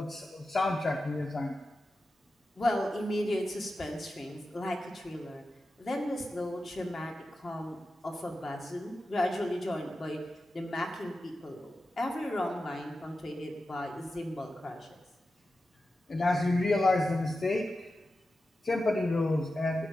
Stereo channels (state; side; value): normal; both; correlation 0.92